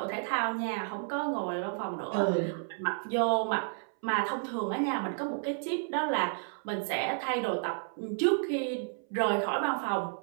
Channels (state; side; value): silent; left; 57 dB below the other